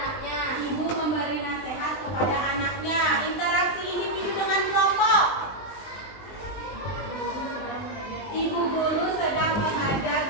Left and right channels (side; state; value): right; late; 20 ms